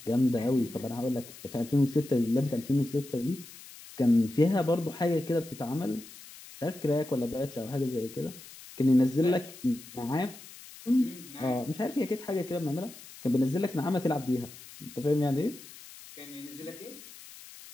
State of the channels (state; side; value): noise; left; hiss, 18 dB below the sound